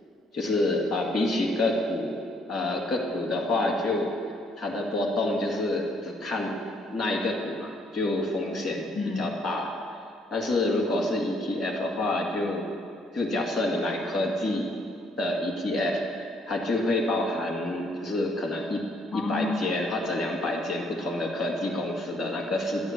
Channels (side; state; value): both; normal; correlation 0.67